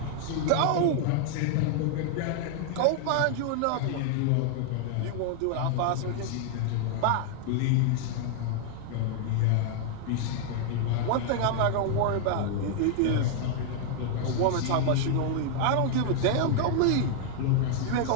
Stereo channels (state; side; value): different; both; correlation 0.00